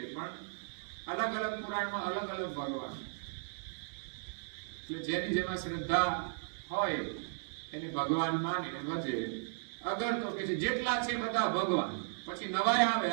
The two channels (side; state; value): left; silent; digital silence